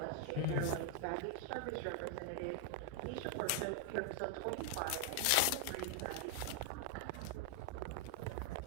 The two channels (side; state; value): both; different; correlation 0.00